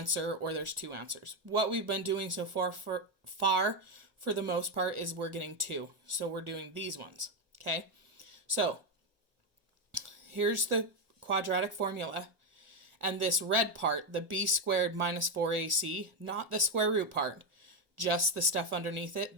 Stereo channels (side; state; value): left; late; 1.4 ms